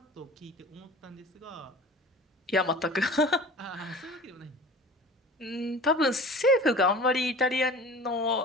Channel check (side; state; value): both; normal; correlation 0.40